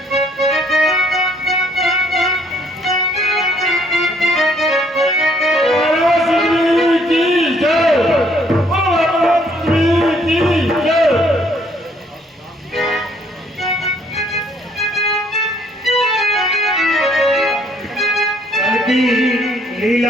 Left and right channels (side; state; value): both; normal; correlation 0.65